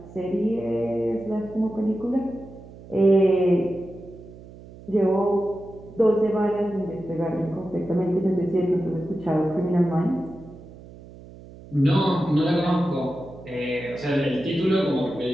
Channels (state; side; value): noise; right; hum, 18 dB below the sound